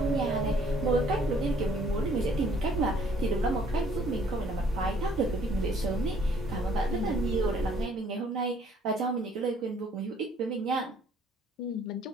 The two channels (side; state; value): both; normal; correlation 0.60